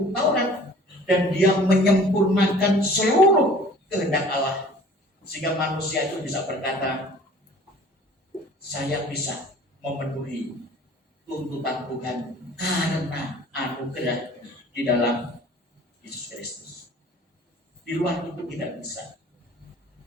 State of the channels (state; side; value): normal; both; correlation 0.49